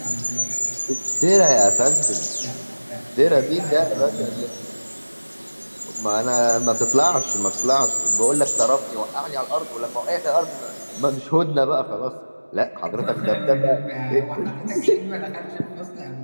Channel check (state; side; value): inverted; both; correlation -1.00